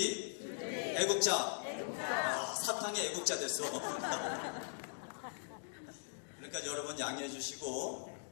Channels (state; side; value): silent; right; digital silence